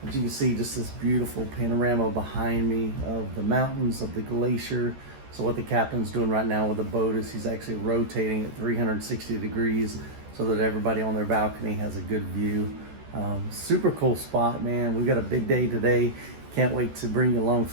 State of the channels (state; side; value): late; left; 14 ms